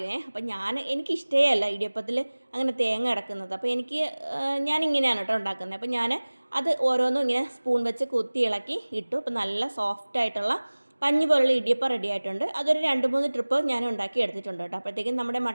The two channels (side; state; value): both; inverted; correlation -1.00